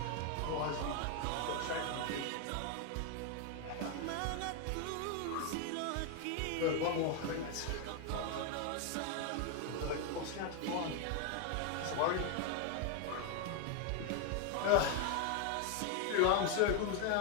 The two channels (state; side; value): different; both; correlation 0.01